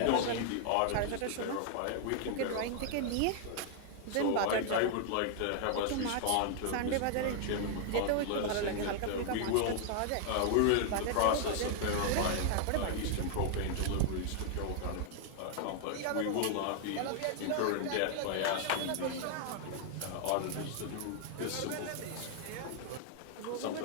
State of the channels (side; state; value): both; different; correlation 0.00